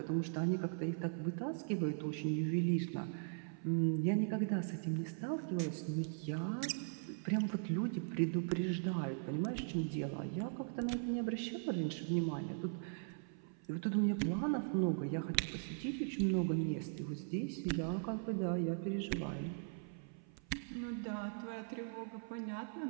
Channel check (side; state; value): left; silent; 51 dB below the other